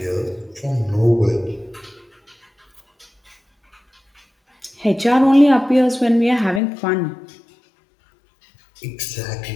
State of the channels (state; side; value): drops out; right; at 6.6 s